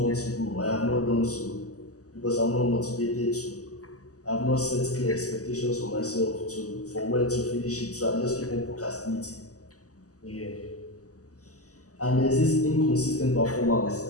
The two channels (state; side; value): late; right; 0.66 ms